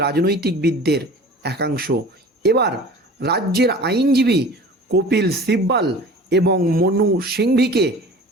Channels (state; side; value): normal; both; correlation 0.41